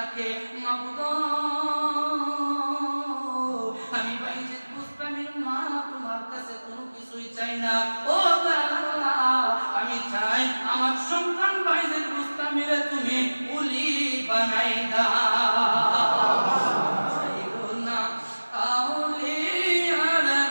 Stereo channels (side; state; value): both; inverted; correlation -1.00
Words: মাবুদ আমি বাইজিদ বুস্তামির মা তোমার কাছে কোনো কিছুই চাই না। ও আল্লাহ, আমি চাই আমার সন্তান বাইজিদ বুস্তামিরে তুমি উলি বানাই দাও। চাইও না আউলিয়ার